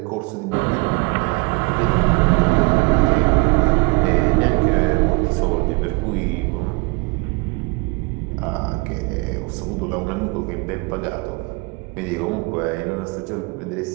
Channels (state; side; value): quieter; left; 27.8 dB